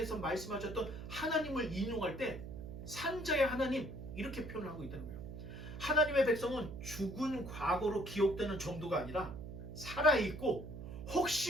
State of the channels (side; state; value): right; noise; hum, 10 dB below the sound